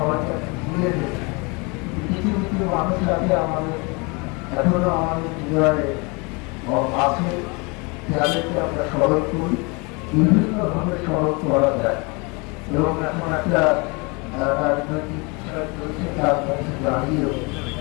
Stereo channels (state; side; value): quieter; right; 29.2 dB